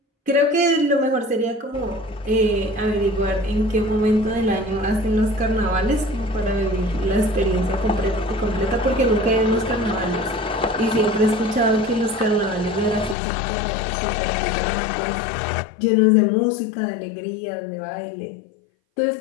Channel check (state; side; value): drops out; right; at 13.2 s